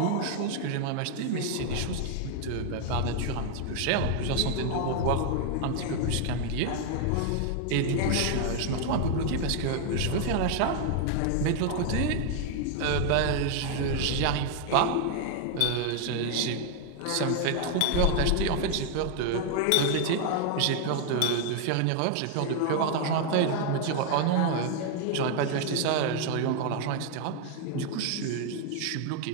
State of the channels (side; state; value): both; different; correlation 0.00